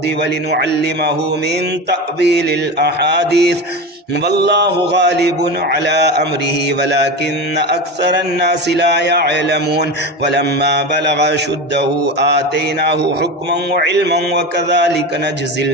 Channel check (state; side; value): normal; both; correlation 0.24